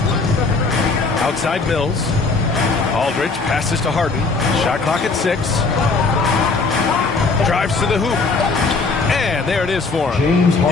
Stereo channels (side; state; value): right; quieter; 4.0 dB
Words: Outside Mills. Aldridge passes to Harden. Shot clock at 6. Drives to the hoop. And there it is for him.